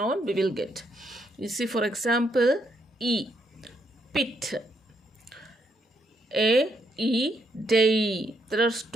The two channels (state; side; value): normal; both; correlation 0.76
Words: we will get. You see, for example, E, pit. A, E, day. There are